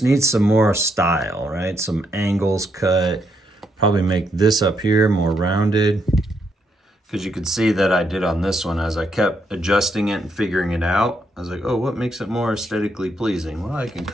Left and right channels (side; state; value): both; normal; correlation 0.77